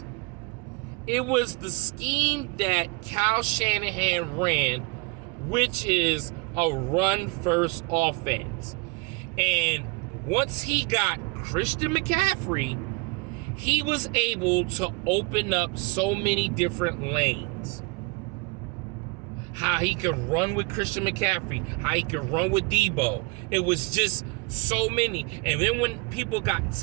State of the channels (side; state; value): left; quieter; 27.9 dB